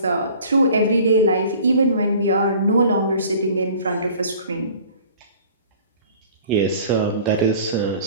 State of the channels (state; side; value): inverted; both; correlation -0.48